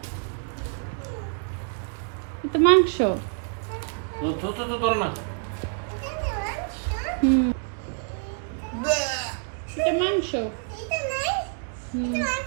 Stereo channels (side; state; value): left; silent; 60 dB below the other